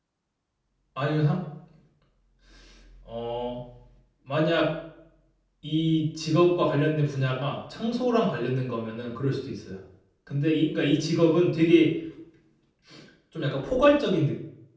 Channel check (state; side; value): identical; both; correlation 1.00